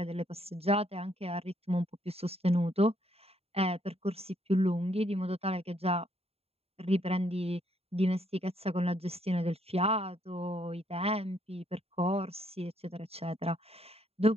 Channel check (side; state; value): left; late; 0.29 ms